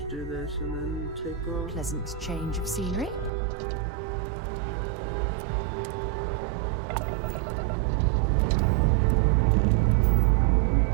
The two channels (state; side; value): drops out; left; at 3.3 s